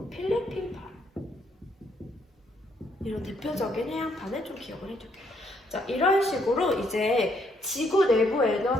필리핀판. 이런 대표적인 해양판을 좀 기억을 해둘게요. 자, 이런 식으로 이제 지구 내부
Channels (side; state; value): both; normal; correlation 0.71